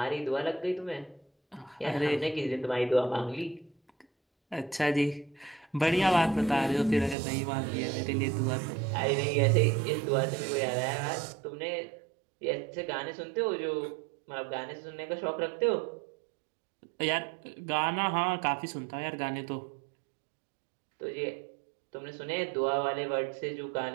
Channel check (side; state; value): left; drops out; at 7.2 s